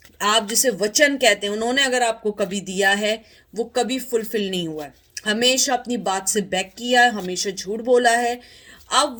आप जिसे वचन कहते हैं, उन्होंने अगर आपको कभी दिया है वो कभी फुलफिल नहीं हुआ है। हमेशा अपनी बात से बैक किया है, हमेशा झूठ बोला है। अब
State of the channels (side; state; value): both; identical; correlation 1.00